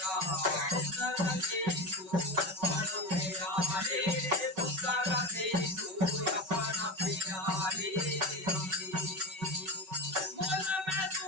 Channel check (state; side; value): late; left; 5.3 ms